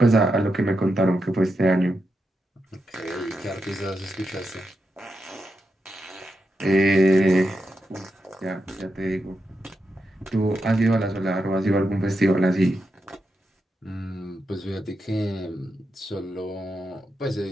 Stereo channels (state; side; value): normal; both; correlation 0.86